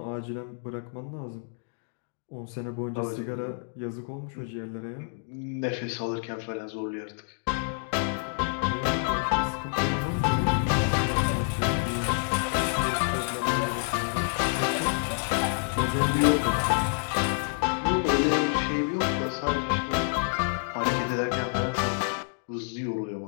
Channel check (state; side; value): silent; right; 59 dB below the other